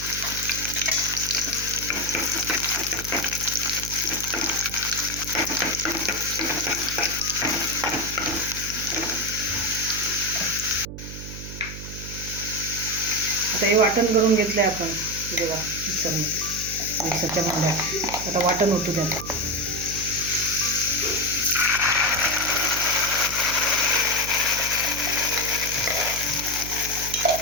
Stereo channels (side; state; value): right; noise; hum, 10 dB below the sound